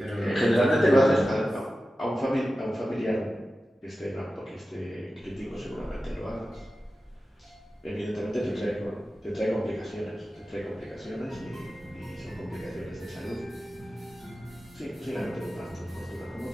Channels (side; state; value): both; normal; correlation 0.94